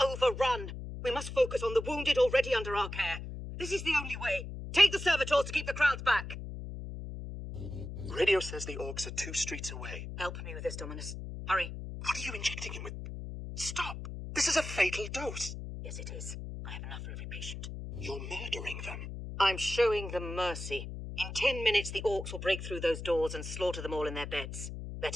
overrun. We must focus on the wounded already under our care. This is the only way. Take the servitors to keep the crowds back. Radio says the Orcs are 2 streets away. Help me with this, Dominus. Hurry. What are you injecting him with? Stop! This is a fatal dose. Yes, it is. I have enough for every patient. You're murdering them. I'm showing them mercy. In 10 minutes, the Orcs will break through those doors and slaughter them all in their beds.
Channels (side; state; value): left; noise; hum, 8 dB below the sound